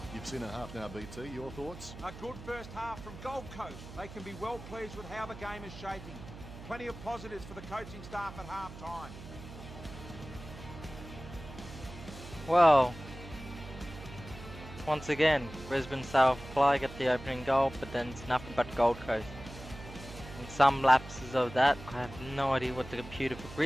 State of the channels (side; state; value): right; noise; hum, 14 dB below the sound